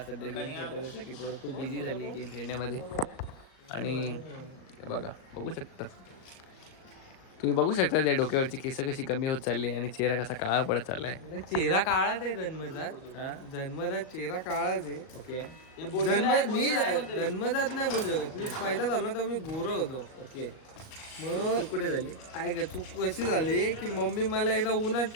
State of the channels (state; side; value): late; right; 37 ms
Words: सध्या गेम खेळतो जसं की पोरं खूप बिझी झाली गेम खेळण्यामध्ये. आणि हे बघू शकता तुम्ही बघू शकता त्या डोक्यावरची केस कशी कमी होत चालली आणि चेहरा कसा काळा पडत चाललाय. चेहरा काळाच आहे जन्मजात. हा जन्मजात चेहरा काळाच आहे. ओके मी जन्मजात नाही बोलू शकत. मी पैदा झालो तर मी गोरा होतो. ओके मग कुठे झाली काय चूक कशी झाली की मम्मी मला एकदा उन्हात